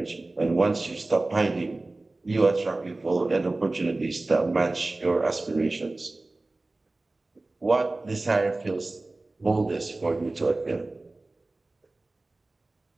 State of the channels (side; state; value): left; quieter; 3.0 dB